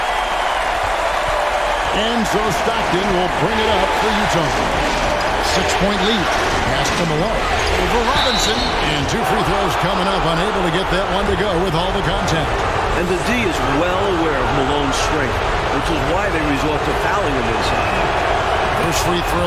And so Stockton will bring it up for Utah. 6-point lead. Pass to Malone. Over Robinson, and 2 free throws coming up, unable to get that one to go with all the contact. And the D is well aware of Malone's strength, which is why they resort to fouling him inside. First free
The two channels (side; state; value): both; identical; correlation 1.00